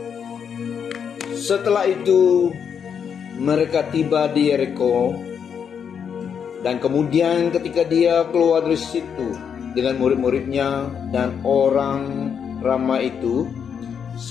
Setelah itu mereka tiba di Yeriko, dan kemudian ketika dia keluar dari situ dengan murid-muridnya dan orang ramai itu,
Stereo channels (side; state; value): right; quieter; 7.4 dB